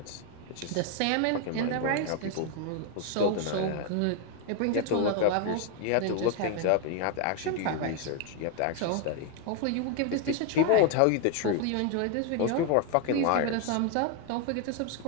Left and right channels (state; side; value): different; both; correlation 0.01